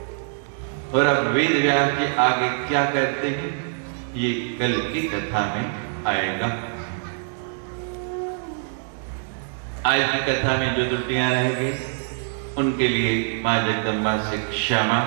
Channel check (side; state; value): left; silent; digital silence